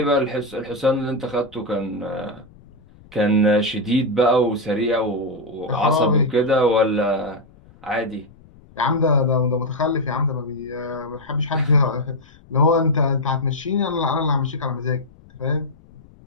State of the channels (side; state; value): left; noise; rumble, 25 dB below the sound